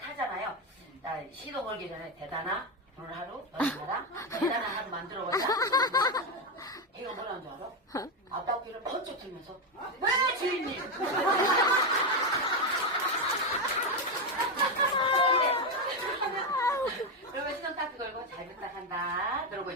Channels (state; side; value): normal; both; correlation 0.08